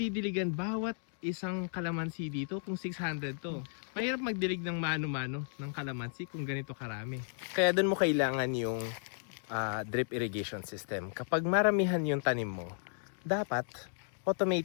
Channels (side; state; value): right; silent; digital silence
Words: bawat isang calamansi dito kung 600 to? Mahirap magdilig ng mano-mano ng calamansi kung ganito karami. Kaya doon mo kailangan yung drip irrigation system. Kapag maramihan yung tanim mo, dapat